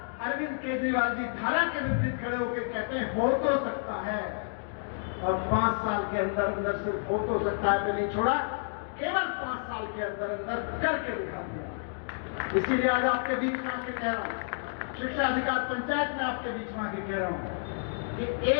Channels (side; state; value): right; silent; digital silence